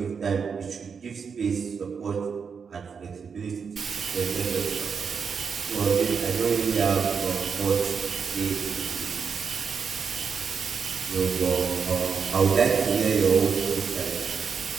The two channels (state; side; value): quieter; left; 6.1 dB